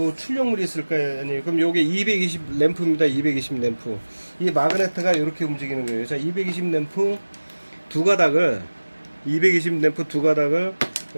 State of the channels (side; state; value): both; inverted; correlation -1.00